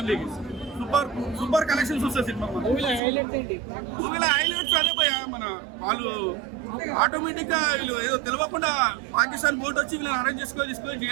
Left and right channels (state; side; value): drops out; left; at 3.0 s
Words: సూపర్ సూపర్ కలెక్షన్స్ వస్తాయి సినిమా. మూవీలో హైలైట్స్ అదే పోయా మన వాళ్ళు ఆటోమేటిక్గా వీళ్ళు ఏదో తెలియకుండా పాకిస్తాన్ బోట్ వచ్చి వీళ్ళని అరేంజ్ తీసుకొని